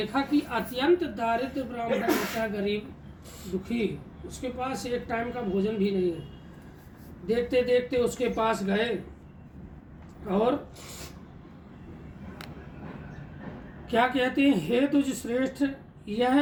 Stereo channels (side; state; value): both; identical; correlation 1.00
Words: कि अत्यंत दारिद्र ब्राह्मण होता, गरीब दुखी, उसके पास एक टाइम का भोजन भी नहीं है। देखते देखते उसके पास गए और क्या कहते हैं, हे तुझ श्रेष्ठ